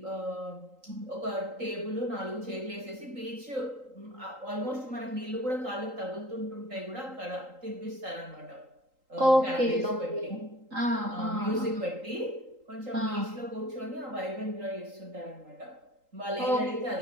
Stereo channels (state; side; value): late; left; 3.8 ms